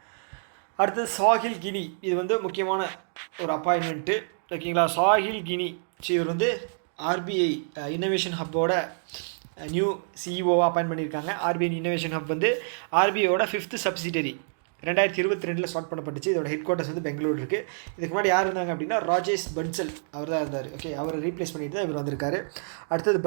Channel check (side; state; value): left; silent; digital silence